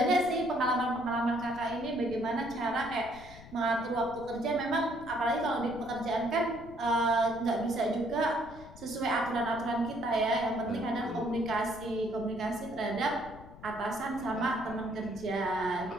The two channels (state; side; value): noise; left; rumble, 17 dB below the sound